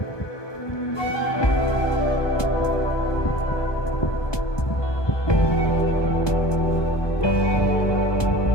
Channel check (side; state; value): right; late; 1.2 ms